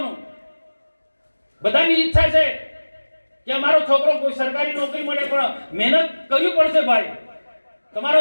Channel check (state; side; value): inverted; both; correlation -1.00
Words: બધાની ઈચ્છા છે કે અમારો છોકરો કોઈ સરકારી નોકરી મળે, પણ મહેનત કરવી પડશે ભાઈ. તમારો